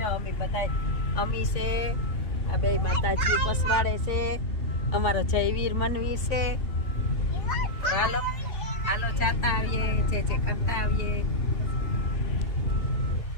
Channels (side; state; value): right; late; 3.5 ms